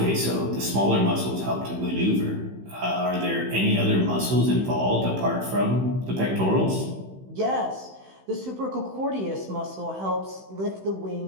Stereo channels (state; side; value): late; left; 16 ms